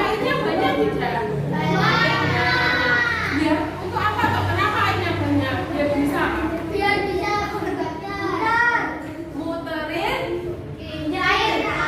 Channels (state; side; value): identical; both; correlation 1.00